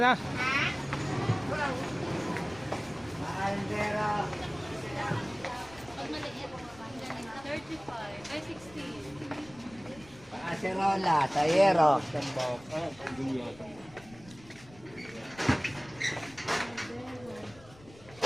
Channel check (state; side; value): noise; left; rumble, 22 dB below the sound